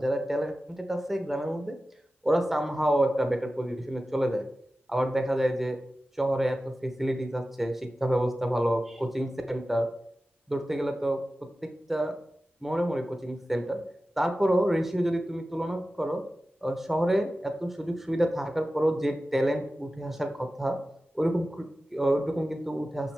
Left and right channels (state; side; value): normal; both; correlation 0.95